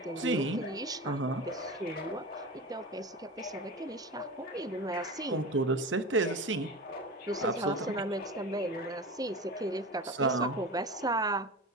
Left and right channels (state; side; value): normal; both; correlation 0.28